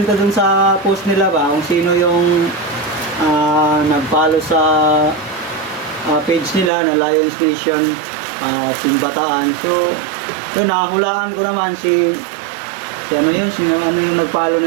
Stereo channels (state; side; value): drops out; left; at 6.7 s